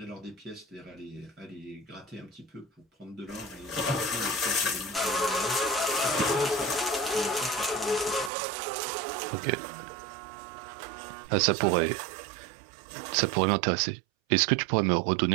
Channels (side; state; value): left; drops out; at 8.3 s